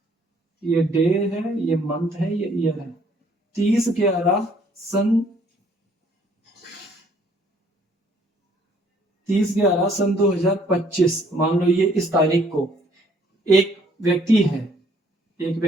ये डे है, ये मंथ है, ये ईयर है। 30/11 सन 2025, मान लो ये इस तारीख को एक व्यक्ति है, एक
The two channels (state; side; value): normal; both; correlation 0.62